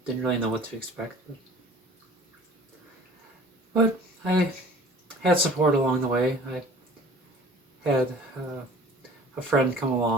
didn't really know what to expect, but I had support along the way. I had a friend come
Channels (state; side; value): normal; both; correlation 0.47